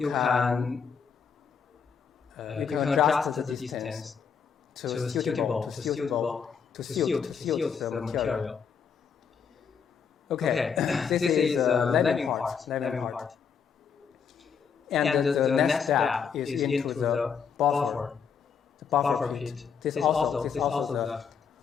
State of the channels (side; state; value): right; quieter; 6.6 dB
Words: adjust the distance to suit the material. Okay, this is lapping part. And the next step is into the buffer pit. This also the